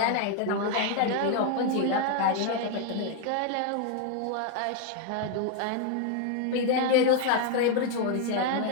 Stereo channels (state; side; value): different; both; correlation 0.01